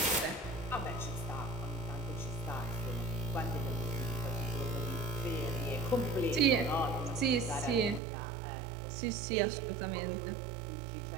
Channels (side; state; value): left; drops out; at 8.0 s